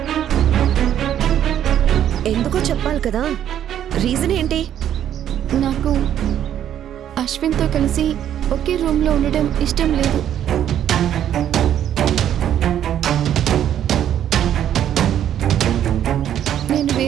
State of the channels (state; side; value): quieter; left; 10.5 dB